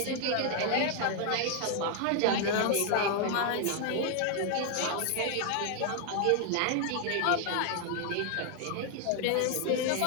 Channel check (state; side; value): different; both; correlation 0.00